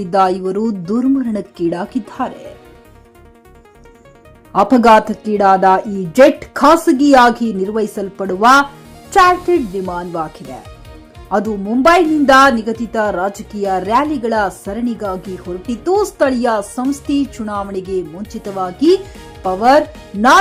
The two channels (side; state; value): both; identical; correlation 1.00